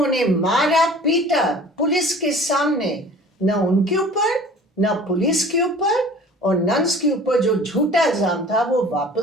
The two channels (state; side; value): normal; both; correlation 0.45